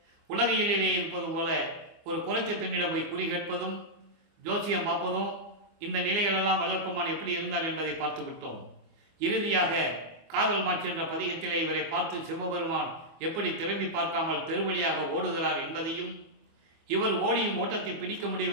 உலகையிலே இருப்பது போல ஒரு குறைச்ச பெண்ணிடம் போய் குறி கேட்பதும் ஜோசியம் பார்ப்பதும் இந்த நிலைகளெல்லாம் வல்லப்பமான் எப்படி இருந்தார் என்பதை பார்த்து விட்டோம். இறுதியாக காதல் மாட்சி என்ற பதிகத்திலே இவரை பார்த்து சிவபெருமான் எப்படி திரும்பி பார்க்காமல் தெருவழியாக ஓடுகிறார் என்பதையும், இவர் ஓடியும் ஓட்டத்தை பிடிக்க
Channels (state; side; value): late; left; 25 ms